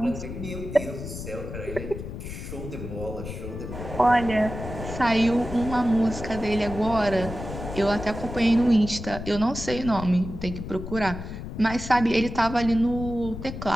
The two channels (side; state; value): left; noise; rumble, 9 dB below the sound